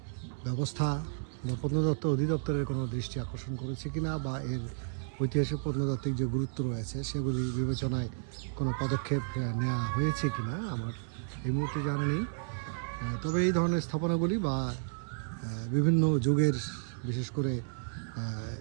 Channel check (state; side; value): silent; left; 56 dB below the other